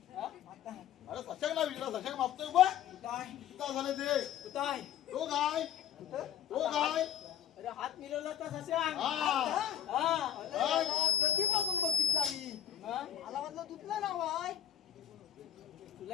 हा? आता अरे सशक ना विचारा, सशक मापतोय बा. काय किती झाले ते? काय तो काय? तो काय? अरे हात मिळवला तर सशांक. हा. कधीपासून बघितला मी. मला वाटलं तुझलं नाव आहे. तुला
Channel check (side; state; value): right; quieter; 10.2 dB